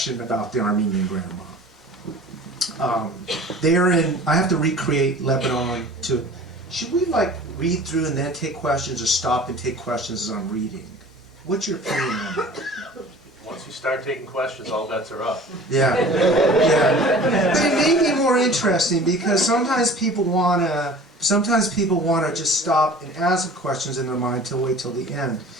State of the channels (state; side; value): normal; both; correlation 0.44